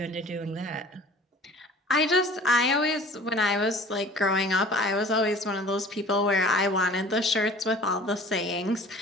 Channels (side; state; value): both; normal; correlation 0.45